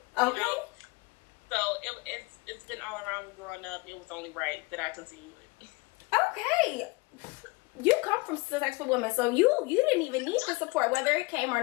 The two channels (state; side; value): quieter; right; 25.6 dB